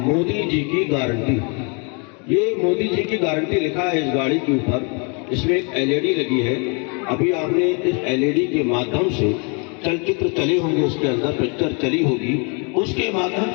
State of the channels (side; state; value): right; quieter; 34.3 dB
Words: जी की गारंटी, ये मोदी जी की गारंटी लिखा है इस गाड़ी के ऊपर। इसमें एक एलईडी लगी है। अभी आपने इस एलईडी के माध्यम से चलचित्र चले होंगे, उसके अंदर पिक्चर चली होगी, उसके माध्यम